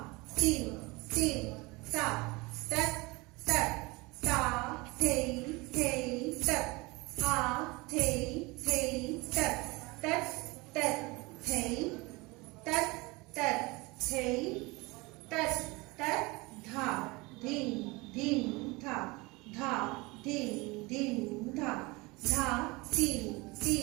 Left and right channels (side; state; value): left; quieter; 24.3 dB